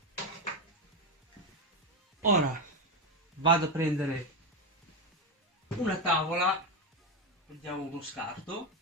Ora vado a prendere una tavola, prendiamo uno scarto,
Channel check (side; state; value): both; normal; correlation 0.11